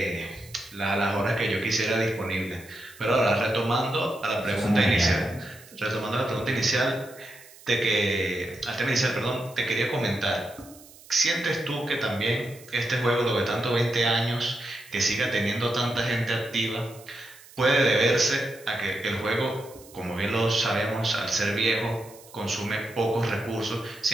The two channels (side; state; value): right; noise; hiss, 22 dB below the sound